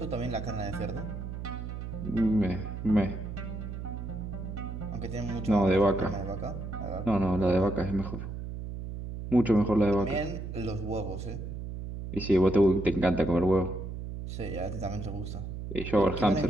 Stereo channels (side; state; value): right; noise; hum, 7 dB below the sound